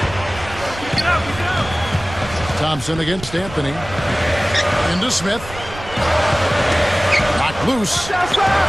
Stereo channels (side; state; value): right; noise; rumble, 14 dB below the sound